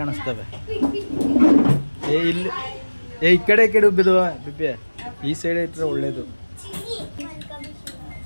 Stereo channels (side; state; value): both; inverted; correlation -1.00